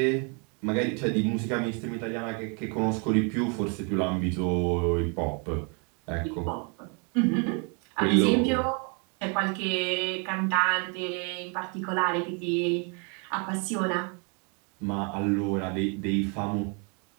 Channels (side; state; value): left; quieter; 35.8 dB